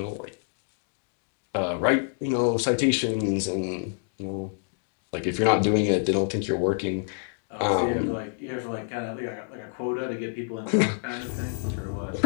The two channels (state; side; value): silent; right; digital silence